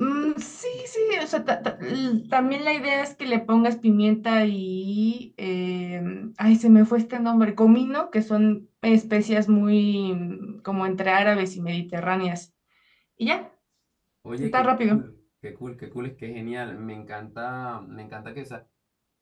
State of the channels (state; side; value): identical; both; correlation 1.00